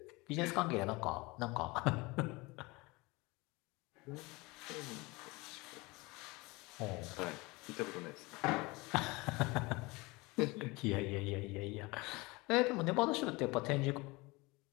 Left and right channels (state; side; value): quieter; right; 24.1 dB